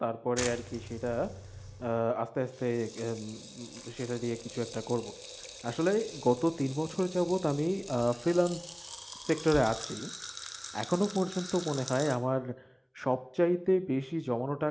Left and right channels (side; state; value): both; identical; correlation 1.00